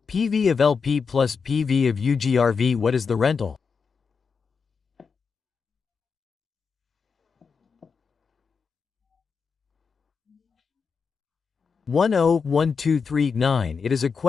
PV of LP plus PV of UGRV. What is the rental? One oh 1239. It is a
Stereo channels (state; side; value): quieter; right; 5.6 dB